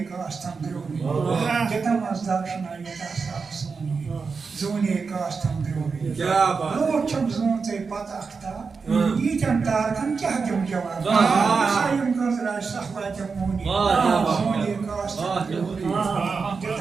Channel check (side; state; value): left; quieter; 5.0 dB